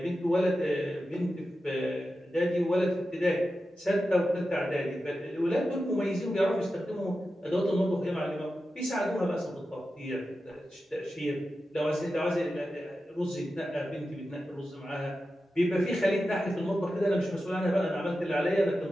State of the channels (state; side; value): normal; both; correlation 0.92